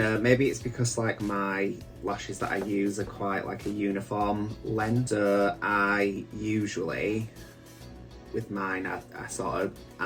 maybe it's because like my lashes that I use are quite like a uniform length, so I usually, with mine, I sort of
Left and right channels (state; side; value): identical; both; correlation 1.00